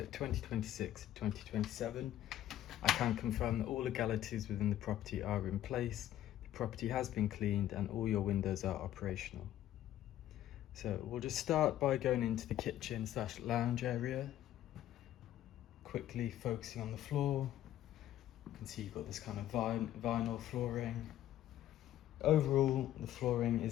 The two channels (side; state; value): right; quieter; 12.6 dB